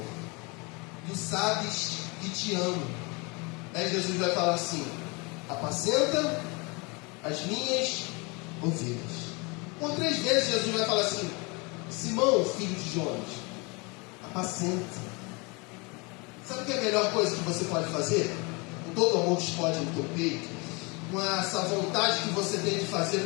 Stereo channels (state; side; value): quieter; right; 28.8 dB